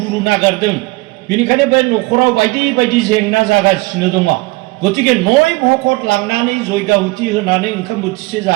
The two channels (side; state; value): left; quieter; 23.1 dB